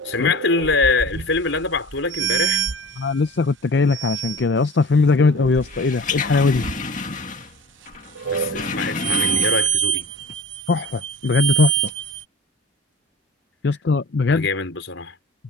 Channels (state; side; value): normal; both; correlation 0.40